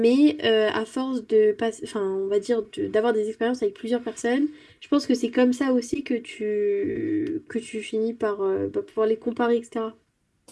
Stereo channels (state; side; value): identical; both; correlation 1.00